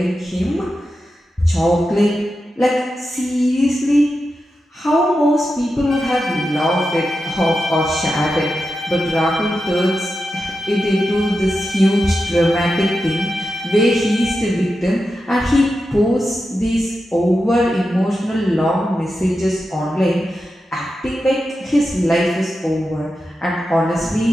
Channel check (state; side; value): normal; both; correlation 0.90